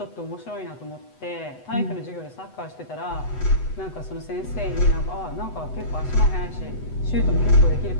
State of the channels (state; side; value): late; right; 8.0 ms